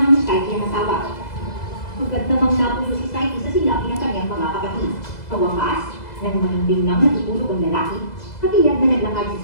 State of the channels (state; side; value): late; right; 2.0 ms